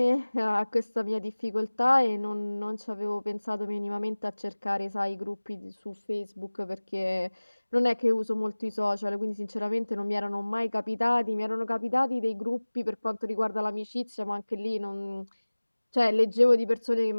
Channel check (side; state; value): both; inverted; correlation -1.00